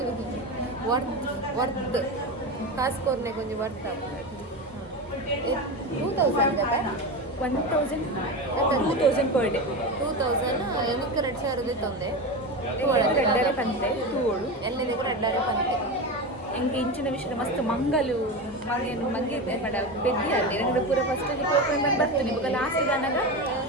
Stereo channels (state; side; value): normal; both; correlation 0.21